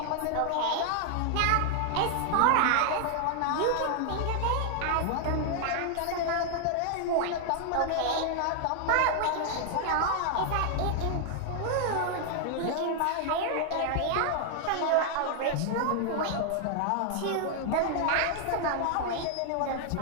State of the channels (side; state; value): both; different; correlation 0.00